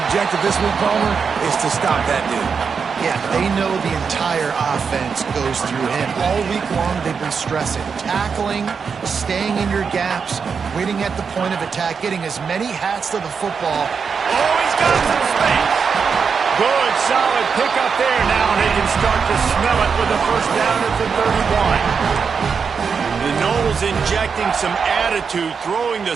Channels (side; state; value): left; quieter; 5.9 dB